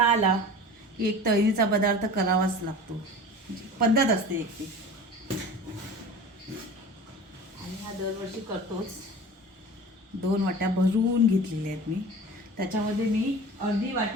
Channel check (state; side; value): normal; both; correlation 0.37